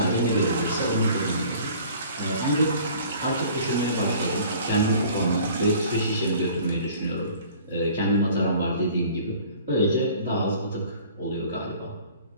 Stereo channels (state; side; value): inverted; both; correlation -0.49